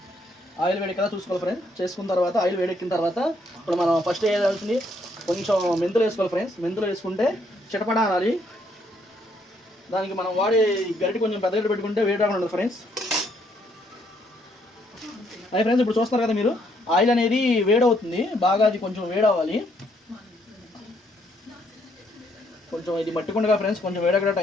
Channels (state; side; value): normal; both; correlation 0.71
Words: ఆయిల్ వేడెక్కేదా చూసుకోవాలి ఫ్రెండ్స్. చేసుకున్న తర్వాత ఆయిల్ వేడెక్కిన తర్వాత ఇప్పుడు మనం ఫస్ట్ వేయాల్సింది కొంచెం మెంతులు వేసుకోవాలి ఫ్రెండ్స్. మెంతులు వేసుకుంటే చిటపడా అనాలి. దానికి మనం వాడే గరిటె కొంచెం పెద్ద గరిటె పెట్టుకుంటే వేడి రాకుండా ఉంటుంది ఫ్రెండ్స్. అదే ఫ్రెండ్స్, ఇప్పుడు చూస్తున్నారు కదా మీరు, ఆయిల్ అనేది వేడవుతుంది బాగా. అది కొంచెం వేడవ్వాలి. కొంచెం ఇది మట్టికుండగా ఫ్రెండ్స్, కొంచెం వేడక్కడ